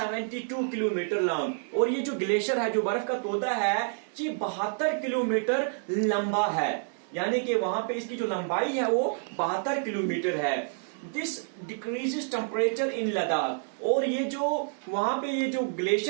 kilometre long. और ये जो ग्लेशियर है, जो बर्फ का तोदा है, ये 72 किलोमीटर लंबा है। यानी कि वहां पे इसकी जो लंबाई है वो 72 किलोमीटर है। This decreases temperature in Ladakh. और ये जो वहां पे ये जो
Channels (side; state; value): left; silent; digital silence